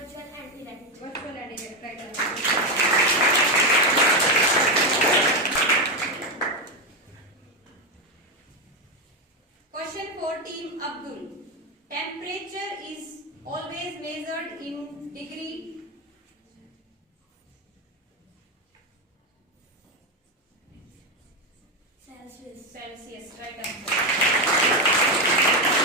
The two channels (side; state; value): both; normal; correlation 0.09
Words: and direct. Virtual and direct. Right answer. Question for team Abdul. Temperature is always measured in degree. Celsius. Celsius. Right answer.